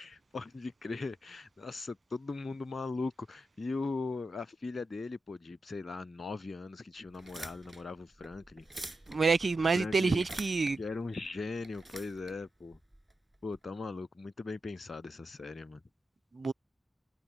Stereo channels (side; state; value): both; normal; correlation 0.89